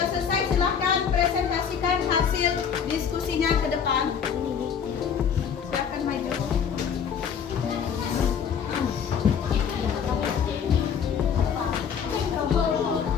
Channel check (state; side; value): quieter; right; 7.3 dB